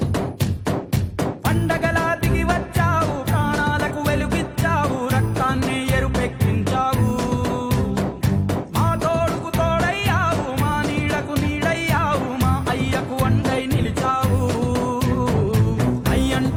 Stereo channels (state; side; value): identical; both; correlation 1.00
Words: పండగలా దిగి వచ్చావు, ప్రాణాలకు వెలుగిచ్చావు, రక్తాన్నే ఎరుపెక్కించావు. మా తోడుకు తోడయ్యావు, మా నీడకు నీడయ్యావు, మా అయ్యకు అండై నిలిచావు.